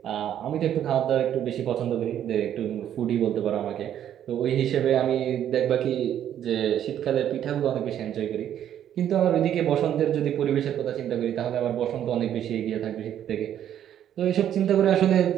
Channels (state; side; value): quieter; left; 10.4 dB